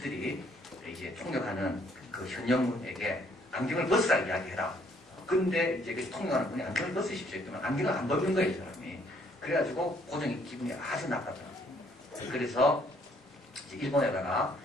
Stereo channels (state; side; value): normal; both; correlation 0.65